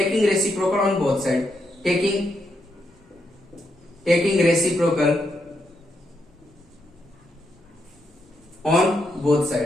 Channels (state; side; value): normal; both; correlation 0.81